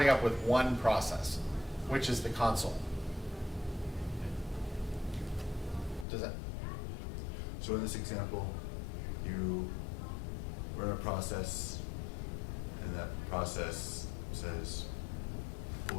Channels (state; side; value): drops out; right; at 6.1 s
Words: up with one process, which is the console. Does that? So in this example, you run a process, and that process says